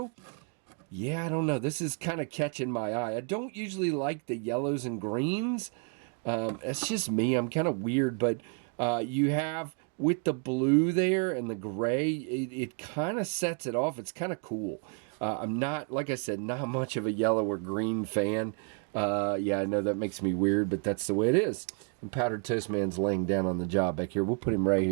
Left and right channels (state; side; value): quieter; left; 39.0 dB